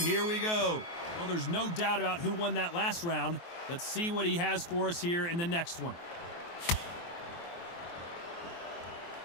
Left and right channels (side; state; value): right; late; 23 ms